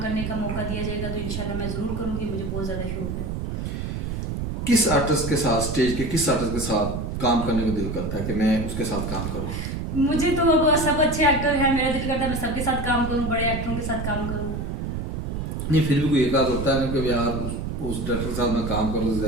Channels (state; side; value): noise; right; rumble, 4 dB below the sound